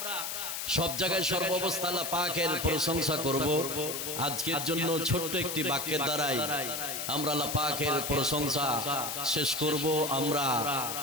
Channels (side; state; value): left; noise; hiss, 4 dB below the sound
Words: সব জায়গায় সর্বাবস্থা আল্লাহ পাকের প্রশংসা করব। আজকের জন্য ছোট্ট একটি বাক্যের দ্বারাই আমরা আল্লাহ পাকের প্রশংসা শেষ করব। আমরা